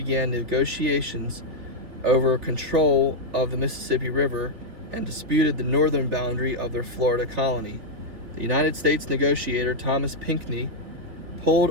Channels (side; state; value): left; late; 3.2 ms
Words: negotiations over control of the Mississippi River and disputed the northern boundary of their Florida colony. The United States negotiator Thomas Pinckney pulled